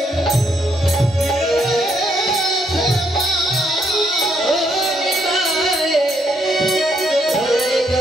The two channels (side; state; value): both; normal; correlation 0.73